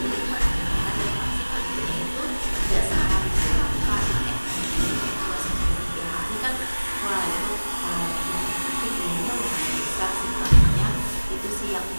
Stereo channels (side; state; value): both; inverted; correlation -1.00